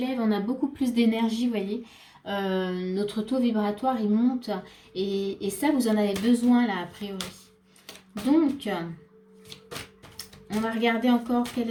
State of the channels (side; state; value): both; identical; correlation 1.00